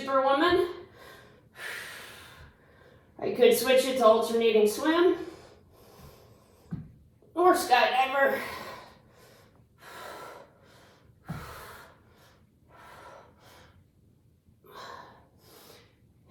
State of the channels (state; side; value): identical; both; correlation 1.00